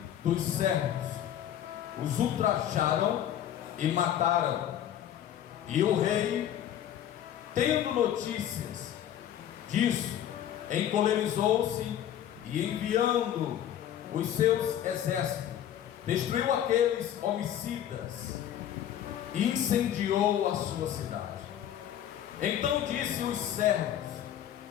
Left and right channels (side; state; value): right; quieter; 10.7 dB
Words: dos servos, os ultrajaram e mataram. E o rei, tendo notícias disso, encolerizou-se e, enviando os seus exércitos, destruiu aqueles homicidas e incendiou a sua cidade. Então disse os servos: